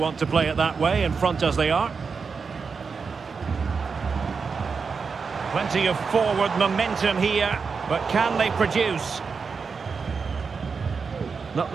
to play it that way, in front as they are. Plenty of forward momentum here, but can they produce? Not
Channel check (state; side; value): quieter; left; 5.3 dB